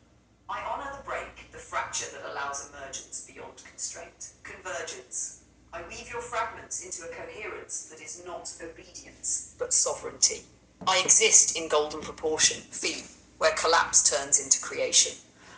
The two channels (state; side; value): identical; both; correlation 1.00